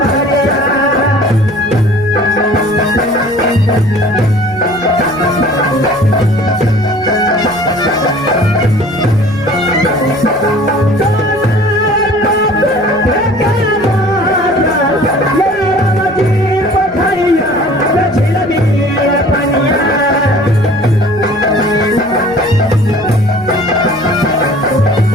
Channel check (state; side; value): noise; right; rumble, 24 dB below the sound